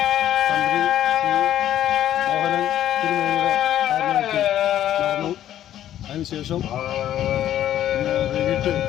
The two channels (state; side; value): quieter; right; 11.8 dB